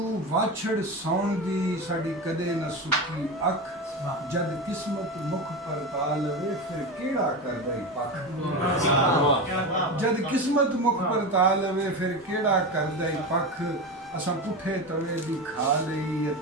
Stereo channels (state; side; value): normal; both; correlation 0.21